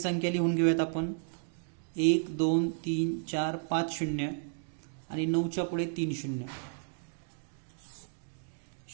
लिहून घेऊयात आपण. 1, 2, 3, 4, 5 0 आणि 9च्या पुढे 3 0.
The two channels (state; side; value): silent; left; digital silence